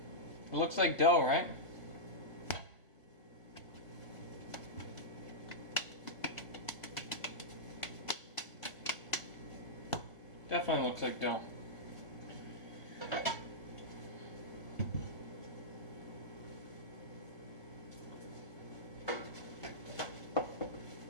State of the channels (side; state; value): right; late; 1.6 ms